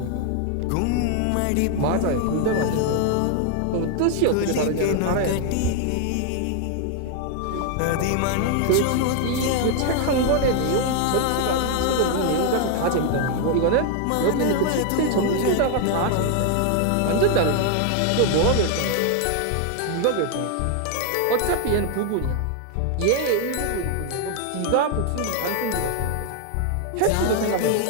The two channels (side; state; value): both; different; correlation 0.01